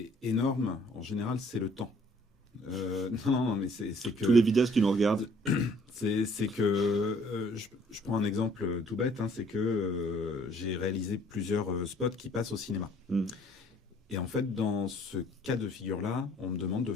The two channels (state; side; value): normal; both; correlation 0.59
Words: énorme. En général, c'est le temps. Non, mais c'est que tous les vidéastes qui nous regardent, c'est que je prends un exemple tout bête, c'est que j'ai réalisé plusieurs spots qui passent au cinéma. Et en fait, dans ce cas de figure-là, on me demande de